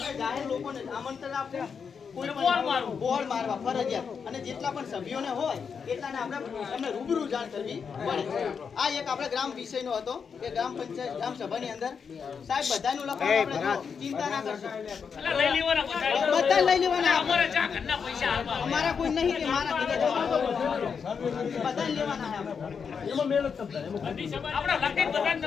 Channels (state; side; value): quieter; right; 6.3 dB